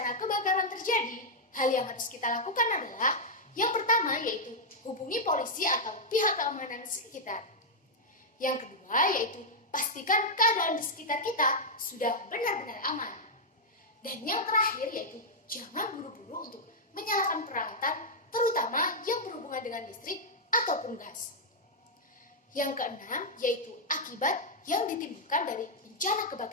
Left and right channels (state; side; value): normal; both; correlation -0.05